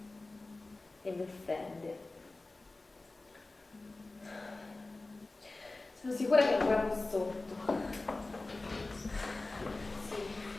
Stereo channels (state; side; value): quieter; right; 3.2 dB